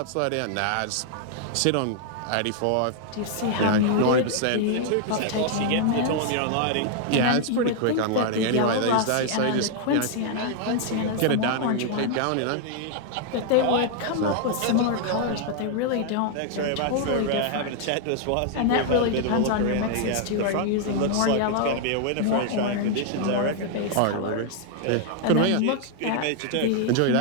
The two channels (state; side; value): different; both; correlation 0.00